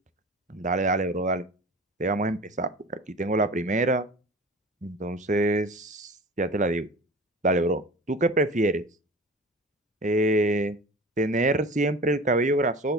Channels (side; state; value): both; normal; correlation 0.38